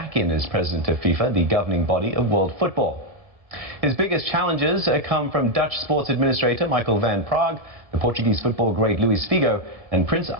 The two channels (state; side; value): late; left; 1.7 ms